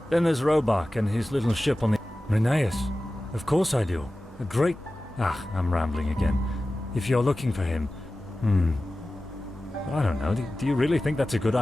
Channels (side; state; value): both; normal; correlation 0.95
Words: Then there's Robach and his little ship on the... Rheneas. Of course I do. A great... I'm rambling again. If you're looking for him... I don't know. Do you really think that's a good